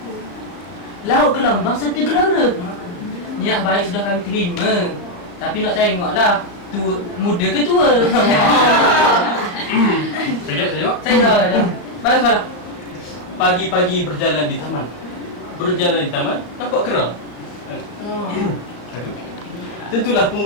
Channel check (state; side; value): late; right; 35 ms